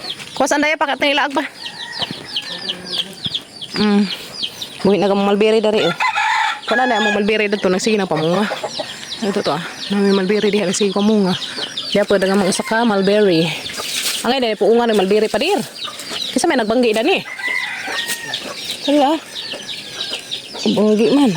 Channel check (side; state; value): both; identical; correlation 1.00